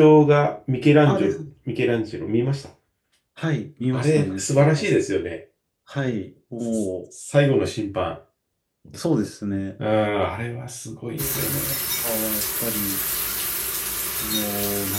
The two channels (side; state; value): both; identical; correlation 1.00